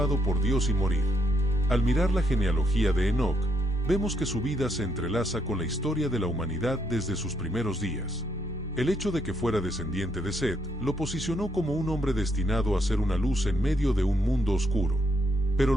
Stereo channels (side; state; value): both; normal; correlation 0.74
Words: por Dios y morir. Al mirar la genealogía de Enoc, vemos que su vida se entrelaza con la historia de la humanidad desde sus primeros días. El hecho de que fuera descendiente de Set lo posicionó como un hombre destinado a ser una luz en medio de un mundo oscuro. Pero